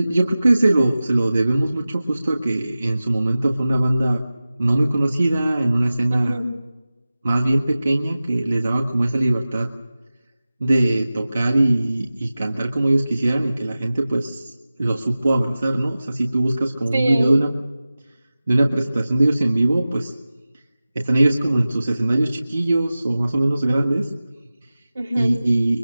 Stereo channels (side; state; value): both; inverted; correlation -0.96